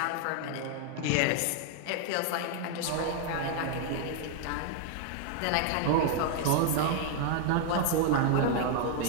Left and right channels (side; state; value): both; different; correlation 0.00